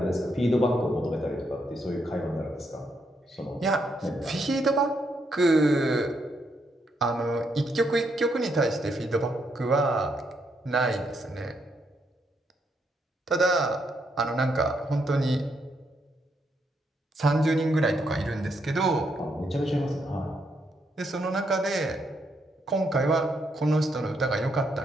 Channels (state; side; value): normal; both; correlation 0.77